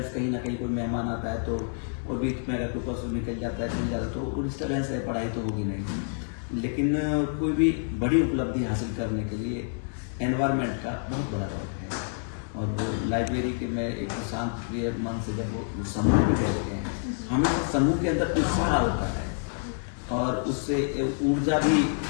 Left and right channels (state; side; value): silent; right; digital silence